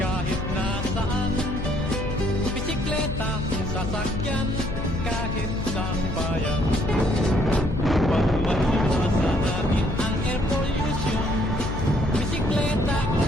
nasaan, bisikleta, sasakyan, kahit sa bayan. Upang maiwasan natin ang air pollution, bisikleta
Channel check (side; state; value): left; noise; hum, 5 dB below the sound